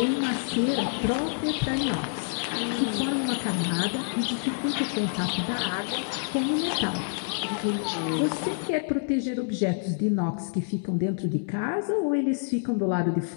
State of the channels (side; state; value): right; silent; 60 dB below the other